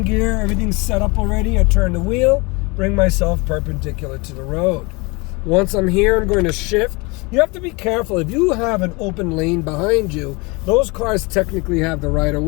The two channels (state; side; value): quieter; right; 27.1 dB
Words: gear, everything's set up already. I turn the wheel, bring myself perpendicular to the road. Once I'm here, I'm going to shift. You have to be careful. If you have an open lane behind you, those cars technically have the right of